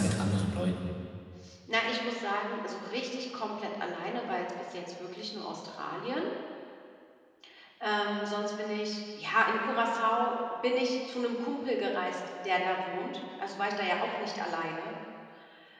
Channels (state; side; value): identical; both; correlation 1.00